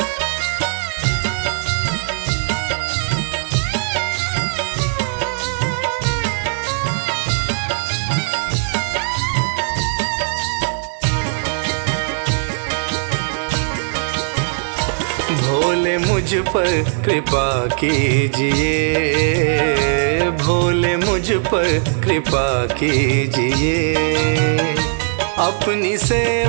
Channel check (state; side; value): silent; left; digital silence